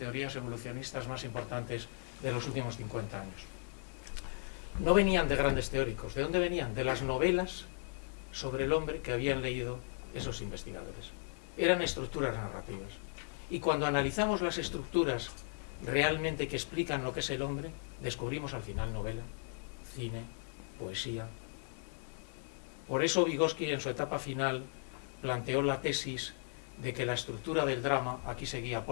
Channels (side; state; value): right; silent; 53 dB below the other